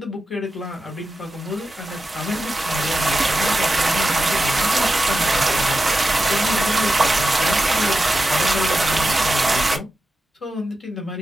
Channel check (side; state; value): both; normal; correlation 0.92